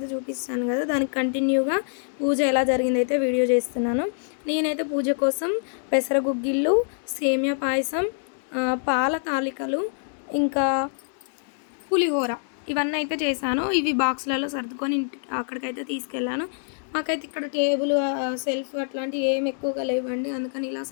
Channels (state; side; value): silent; right; digital silence